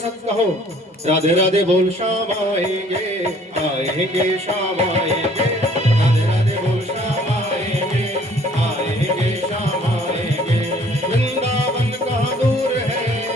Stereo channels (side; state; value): both; normal; correlation 0.57